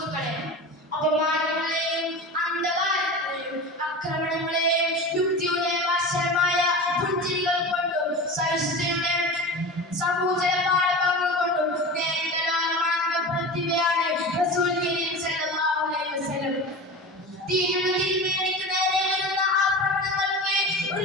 അപമാനങ്ങളെയും അന്ധകാരങ്ങളെയും ആക്രമണങ്ങളെയും യുക്തിയുടെ വശമായ പുഞ്ചിരികൾ കൊണ്ടും സഹിഷ്ണുതയുടെ സമൂചന പാഠഭാഗങ്ങൾ കൊണ്ടും നേരിട്ട പ്രതിഭയാണ് റസൂൽ കരീം സല്ലല്ലാഹു അലൈഹി വസല്ലം. ദീനിന് തിരുമേനിക്ക് നേരെ വരുന്ന ആക്രമണങ്ങൾക്ക് ഒരു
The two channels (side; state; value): both; normal; correlation 0.31